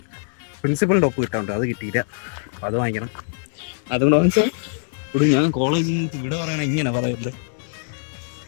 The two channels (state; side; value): silent; right; 64 dB below the other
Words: പ്രിൻസിപ്പളിന്റെ ഒപ്പ് കിട്ടാറുണ്ട്, അത് കിട്ടിയില്ല. അപ്പൊ അത് വാങ്ങിക്കണം. അതുകൊണ്ട് വാങ്ങിച്ചാൽ ഞാൻ കോളേജിൽ നിന്ന് ഇവിടെ പറയണ ഇങ്ങനെ പറയല്ലേ.